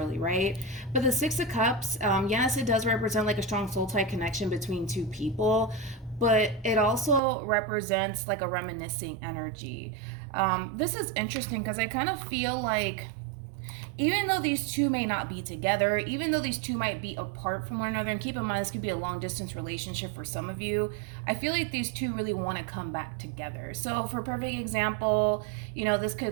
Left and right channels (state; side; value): drops out; left; at 7.2 s